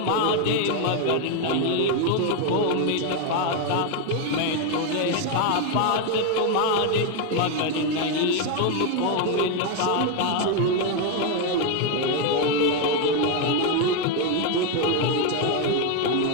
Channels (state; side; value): different; both; correlation 0.02